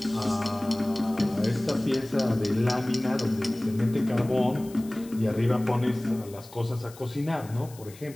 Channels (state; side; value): noise; left; hiss, 21 dB below the sound